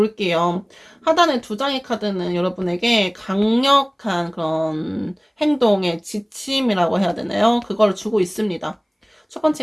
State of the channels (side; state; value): both; identical; correlation 1.00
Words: 하단의 두 장의 카드는 여러분에게 강력한 그런 행동의 지침이라고 해야 되나요? 그걸 주고 있습니다. 첫